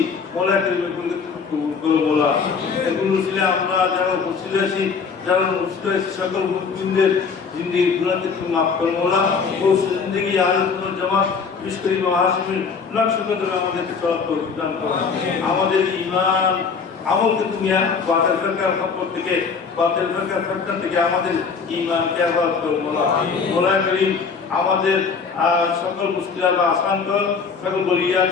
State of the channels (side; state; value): right; quieter; 5.5 dB